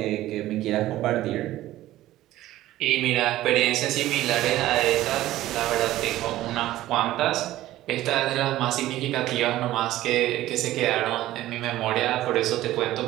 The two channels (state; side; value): quieter; left; 15.1 dB